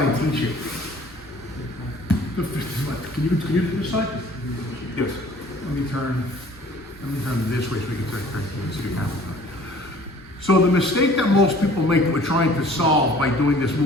I teach it. Can you do this side? Yes. Let me turn this way so we can turn to the camera. So the mistake that most people make that we're trying to solve by doing this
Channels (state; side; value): normal; both; correlation 0.51